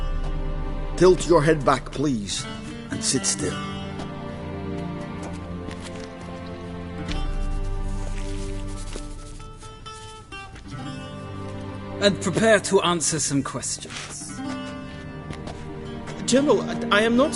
Tilt your head back, please, and sit still. And prepare to answer some questions. General, I am not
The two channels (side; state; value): both; identical; correlation 1.00